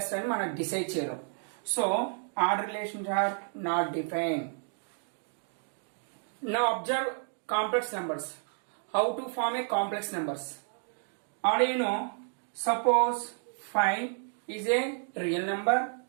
అని మనం decide చేయలేం. So order relations are not defined. Now observe complex numbers. How to form a complex numbers? Already you know, suppose 5 is a real number,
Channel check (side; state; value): left; silent; 57 dB below the other